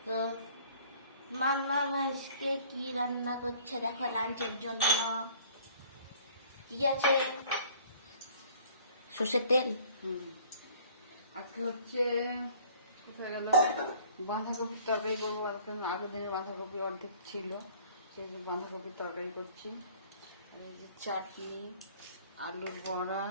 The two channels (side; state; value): both; inverted; correlation -0.54